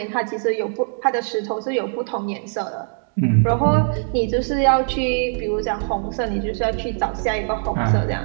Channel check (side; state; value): left; silent; 64 dB below the other